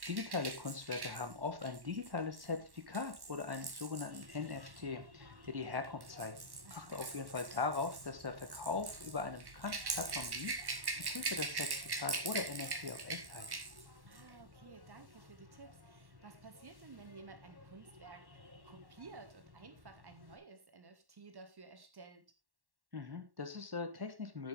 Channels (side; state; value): left; late; 1.1 ms